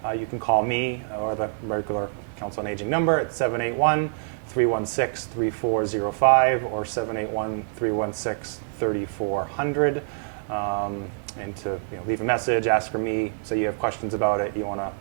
you can call me or the regular Council on Aging number at 781-316-3405 or 781-316-3400. And to leave a message, ask for me, say you have questions about it, you want to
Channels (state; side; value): silent; left; digital silence